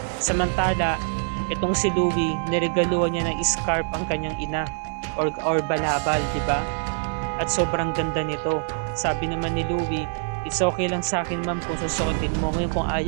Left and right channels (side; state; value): left; silent; 62 dB below the other